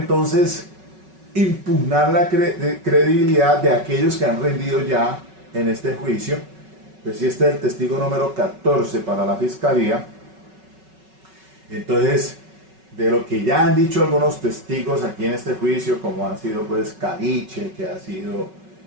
impugnar la credibilidad de aquellos que han rendido ya en este juicio. Pues si este es el testigo número 14 para la fiscalía, entonces de lo que ya han dicho algunos testigos aquí en este juicio, como han sido pues Caliche, que ha sido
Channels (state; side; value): late; left; 5.3 ms